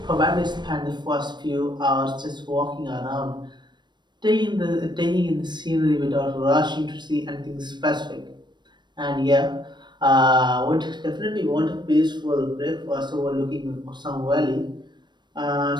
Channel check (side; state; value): left; late; 0.22 ms